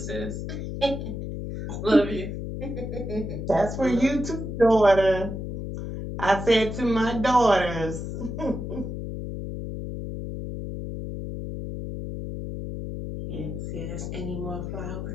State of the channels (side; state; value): left; noise; hum, 6 dB below the sound